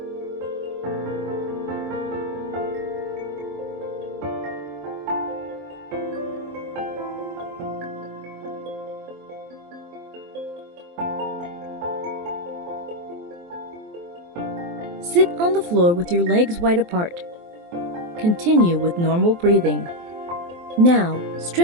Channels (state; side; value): late; left; 23 ms